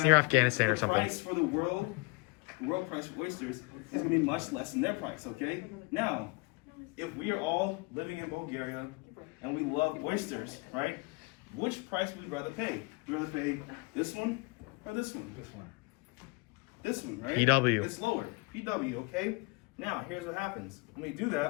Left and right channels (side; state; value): right; quieter; 27.7 dB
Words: near Afghanistan or the something. price for the world price for oysters is going to be much less than their price, okay? Now, if we are all living in Bulgaria and we love oysters, right? Which price would we rather pay? Would we rather pay this one or this one? This one. This one, right? PW. It's lower. PW, okay? Now, here's what happens. When we do